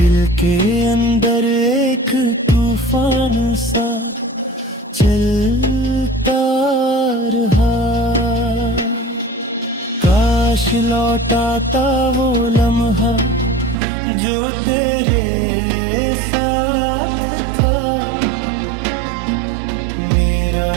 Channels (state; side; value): drops out; left; at 13.8 s